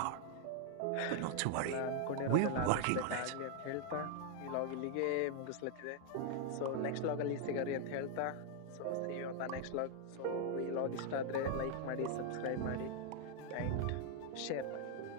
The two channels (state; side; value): different; both; correlation 0.00